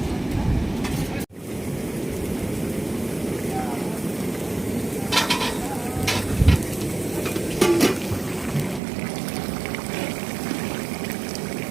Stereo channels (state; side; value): drops out; left; at 8.8 s